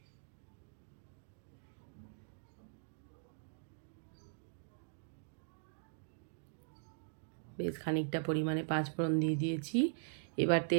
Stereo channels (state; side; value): silent; left; digital silence